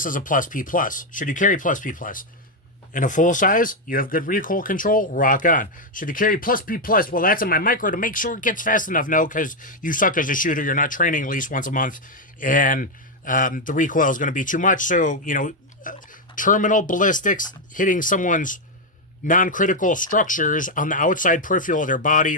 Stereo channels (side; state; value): both; normal; correlation 0.03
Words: is a plus P plus. Should you carry plus P plus? In a full size, you have good recoil control, rock on. Should you carry plus P plus? Well, that's in my micro to make sure it gets fast enough. No, because you suck as a shooter. You're not training at least once a month, and the recoil is going to be too much. So, you know, terminal ballistics hitting someone's non-critical structures on the outside peripheral of their body